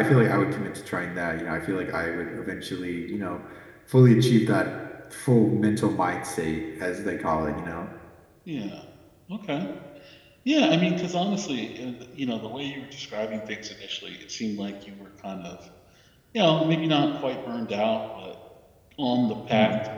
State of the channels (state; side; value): identical; both; correlation 1.00